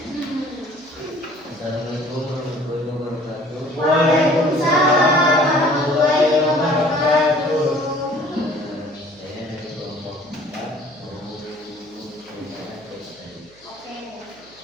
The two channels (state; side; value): noise; right; hum, 28 dB below the sound